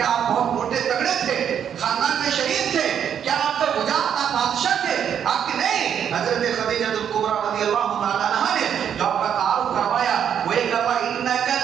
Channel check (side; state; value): left; quieter; 8.7 dB